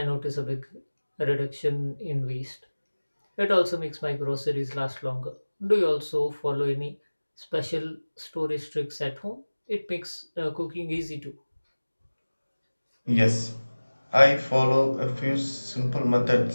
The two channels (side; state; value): both; inverted; correlation -1.00